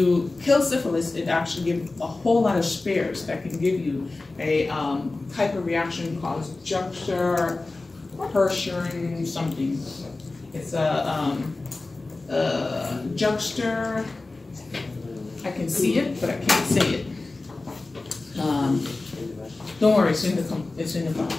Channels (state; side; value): quieter; right; 3.3 dB